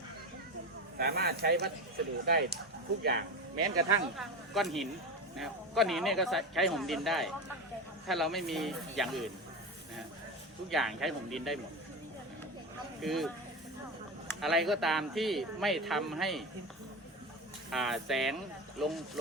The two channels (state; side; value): normal; both; correlation 0.22